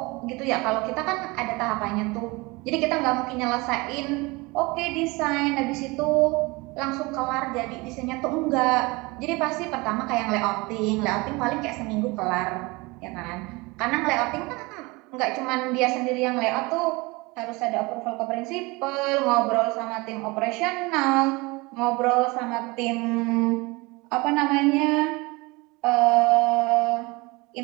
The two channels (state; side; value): quieter; left; 24.5 dB